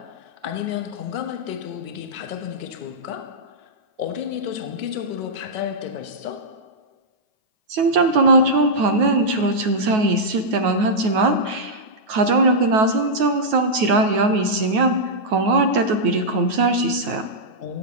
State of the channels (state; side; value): late; left; 9.3 ms